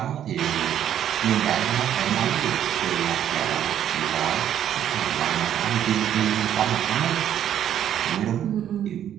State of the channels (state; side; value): quieter; left; 10.4 dB